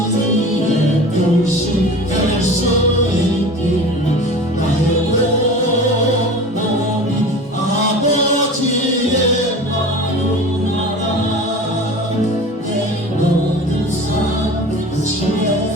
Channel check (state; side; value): normal; both; correlation 0.37